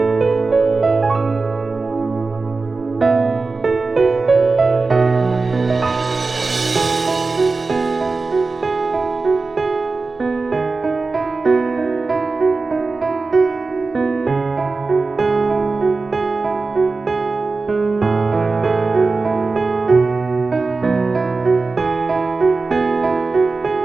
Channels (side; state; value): left; quieter; 3.9 dB